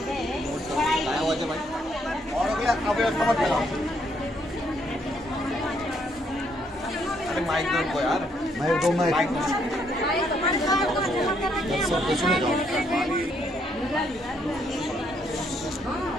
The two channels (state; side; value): normal; both; correlation 0.72